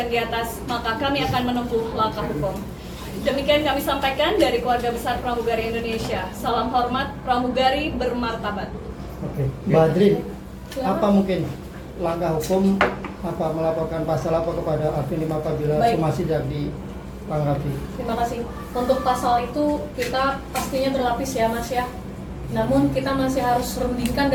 di atas, maka kami akan menempuh langkah hukum. Demikian kami sampaikan dari keluarga besar pramugari Indonesia. Salam hormat, pramugari bermartabat. Oke. Mbak Adrin, apa mungkin langkah hukum apa melaporkan pasal apa kepada Alvin Lim apabila Baik. somasi tidak ditanggapi? Terima kasih. Untuk pasal itu kita pastinya berlapis ya Mas ya. Namun kita masih harus rundingkan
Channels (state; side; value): identical; both; correlation 1.00